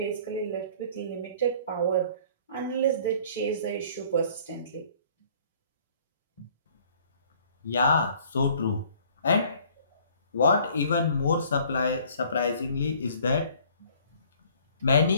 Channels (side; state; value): both; inverted; correlation -0.55